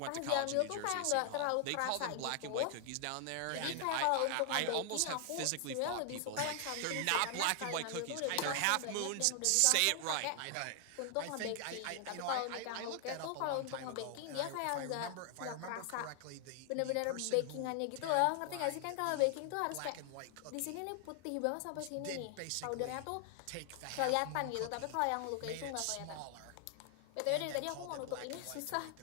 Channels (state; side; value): different; both; correlation 0.00